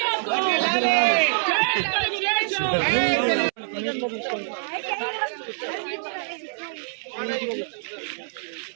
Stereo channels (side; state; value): left; silent; 62 dB below the other